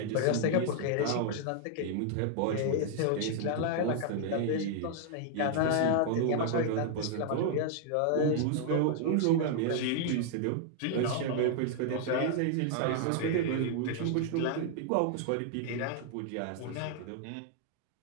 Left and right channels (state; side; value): different; both; correlation 0.00